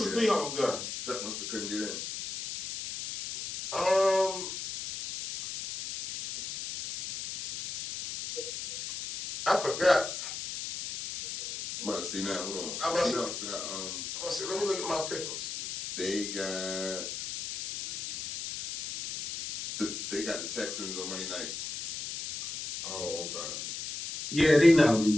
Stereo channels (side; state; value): left; noise; hiss, 7 dB below the sound